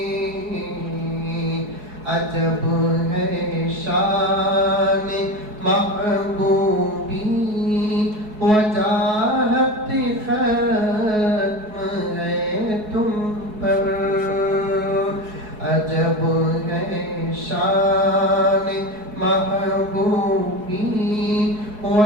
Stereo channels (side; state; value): left; late; 4.7 ms